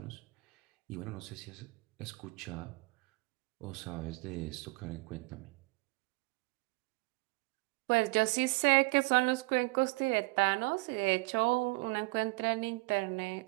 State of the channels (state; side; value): quieter; left; 26.8 dB